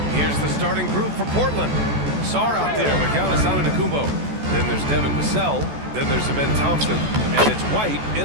Here's the starting group for Portland. Sarr out there with Giannis Antetokounmpo. Then there's Devin Vassell. Then there's Ben Thompson. And it's White in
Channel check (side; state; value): left; late; 14 ms